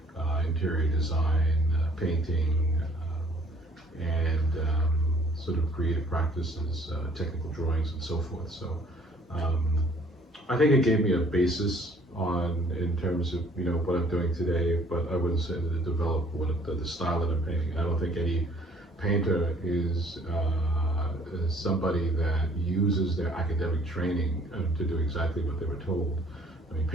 interior design, painting, and sort of creative practices, technical drawings, and so forth. So I think it gave me a basis in terms of what I'm doing today, but I wouldn't say that it developed the style that I'm painting. I don't think any painter is somebody that uses their academic training to do exactly what they were told. I mean,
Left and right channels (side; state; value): both; normal; correlation 0.58